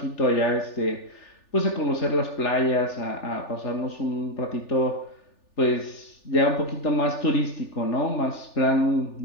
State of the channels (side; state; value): right; late; 3.4 ms